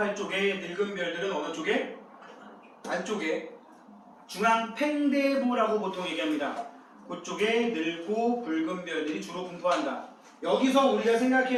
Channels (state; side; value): identical; both; correlation 1.00